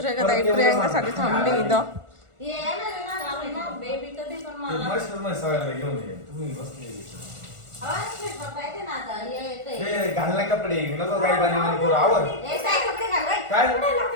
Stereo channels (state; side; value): late; left; 1.4 ms